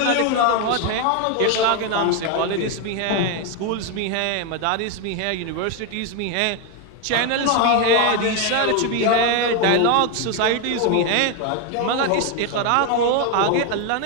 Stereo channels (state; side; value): different; both; correlation 0.01